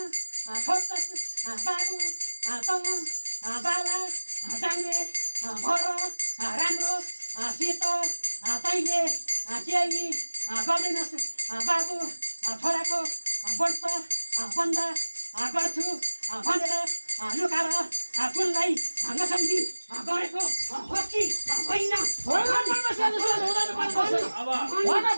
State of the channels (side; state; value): both; inverted; correlation -1.00